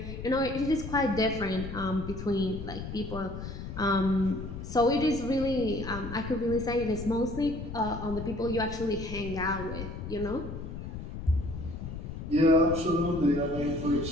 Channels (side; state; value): left; noise; rumble, 8 dB below the sound